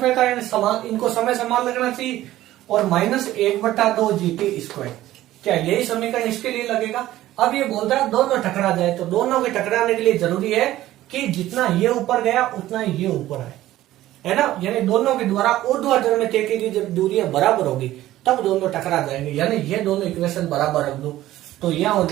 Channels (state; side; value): quieter; left; 14.8 dB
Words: यानी समान, इनको समय समान लगना चाहिए, और माइनस 1/2 GT स्क्वायर। क्या यही समीकरण इसके लिए लगेगा? अब ये बोलता है दोनों टकरा जाए, तो दोनों के टकराने के लिए जरूरी है कि जितना ये ऊपर गया उतना ही ये ऊपर आए, है ना। यानी दोनों के द्वारा ऊर्ध्वाधर में तय की गई जब दूरियां बराबर होगी तब दोनों टकरा जाएंगे, यानी ये दोनों इक्वेशन बराबर रख दो। तो यह हो